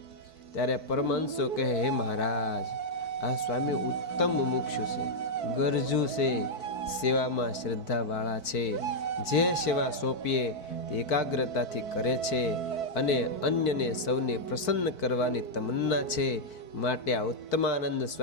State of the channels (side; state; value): right; late; 4.6 ms